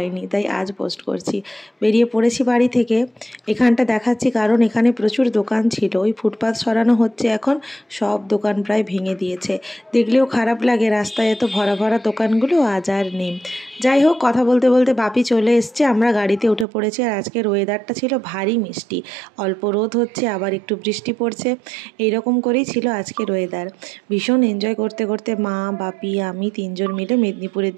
তাই আজ পোস্ট করছি। বেরিয়ে পড়েছি বাড়ি থেকে। এখানটা দেখাচ্ছি কারণ এখানে প্রচুর দোকান ছিল। ওই ফুটপাথ সরানো হচ্ছে এখন, সব দোকান প্রায় ভেঙে দিয়েছে। দেখলেও খারাপ লাগে, রাস্তায় এত ভরা ভরা দোকানগুলো আজ আর নেই। যাই হোক, কথা বলতে বলতে বাপি চলে এসছে, আমরা গাড়িতে উঠে পড়েছি। আর আজকের ওয়েদারটা ছিল ভারী মিষ্টি, অল্প রোদ হচ্ছে আবার একটু বৃষ্টি পড়ছে, এইরকম করেই ছিল আজকের ওয়েদার। ভীষণ এনজয় করতে করতে মা, বাপি, আমি তিনজন মিলে মেদিনীপুরের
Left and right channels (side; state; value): left; drops out; at 16.7 s